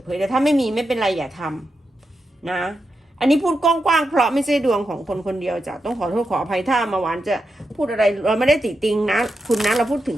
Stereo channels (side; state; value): both; normal; correlation 0.87